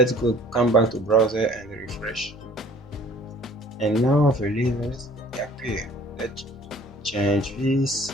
come back to browser and refresh, and now the levels appear. Let's change this.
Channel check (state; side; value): normal; both; correlation 0.51